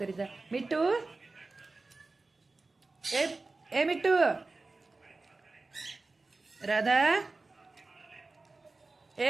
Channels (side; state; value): left; quieter; 3.5 dB